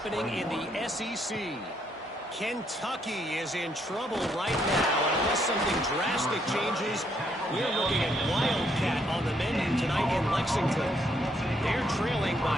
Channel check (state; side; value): normal; both; correlation 0.72